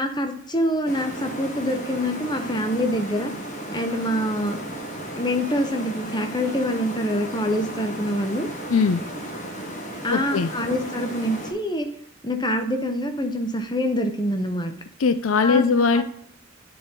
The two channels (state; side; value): normal; both; correlation 0.41